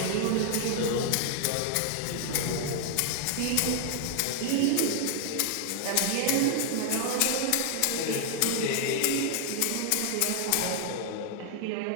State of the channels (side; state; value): both; different; correlation 0.00